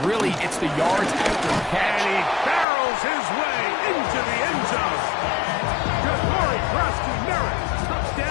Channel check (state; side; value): drops out; right; at 2.7 s